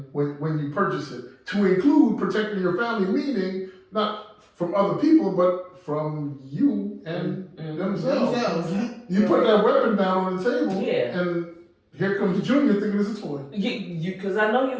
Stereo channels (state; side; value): identical; both; correlation 1.00